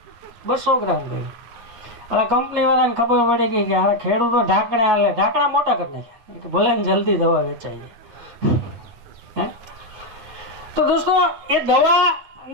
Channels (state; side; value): late; left; 9.4 ms